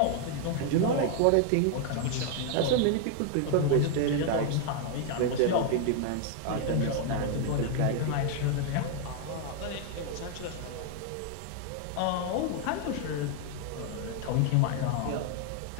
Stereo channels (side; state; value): both; different; correlation 0.00